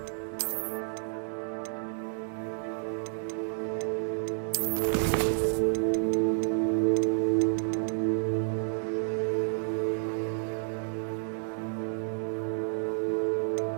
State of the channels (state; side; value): silent; left; digital silence